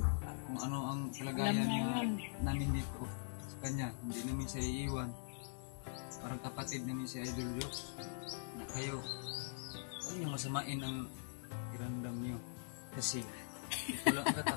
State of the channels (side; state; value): right; silent; digital silence